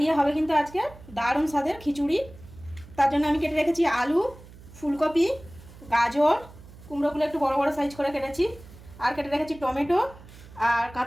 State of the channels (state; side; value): noise; right; hum, 20 dB below the sound